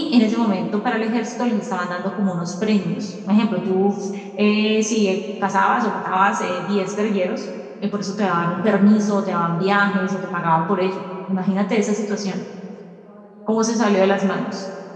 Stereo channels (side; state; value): both; identical; correlation 1.00